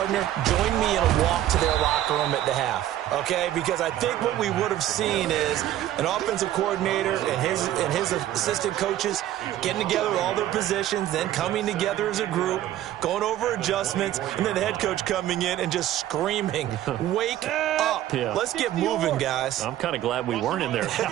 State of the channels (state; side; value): quieter; left; 12.9 dB